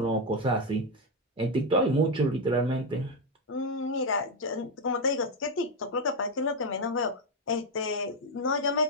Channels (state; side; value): normal; both; correlation 0.06